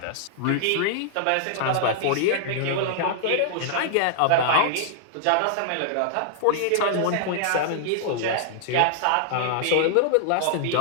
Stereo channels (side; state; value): both; different; correlation -0.01